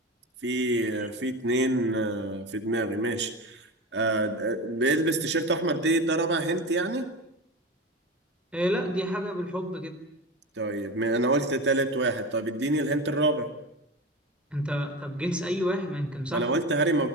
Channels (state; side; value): normal; both; correlation 0.26